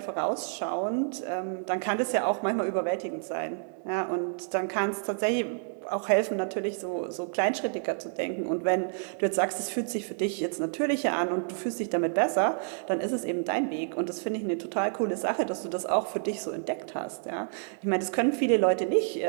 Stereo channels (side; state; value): left; silent; digital silence